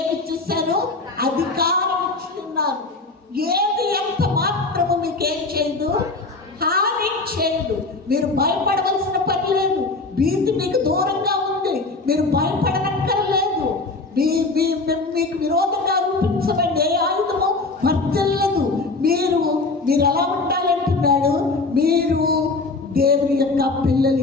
ఇచ్చేసాను? అధికారం ఇస్తున్నాను. ఏది ఎంత మాత్రము మీకేం చేయదు? హాని చేయదు. మీరు భయపడవలసిన పని లేదు. భీతి మీకు దూరంగా ఉంది. మీరు భయపడనక్కర్లేదు. మీకు విరోధంగా రూపించబడి ఏ ఆయుధము వర్తిల్లదు. మీరు ఎలా ఉండాలంటున్నాడు? మీరు దేవుని యొక్క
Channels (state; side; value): quieter; right; 3.5 dB